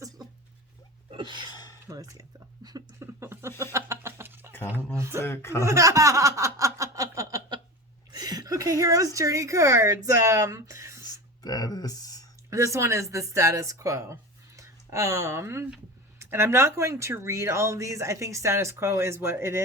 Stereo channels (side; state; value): both; normal; correlation 0.29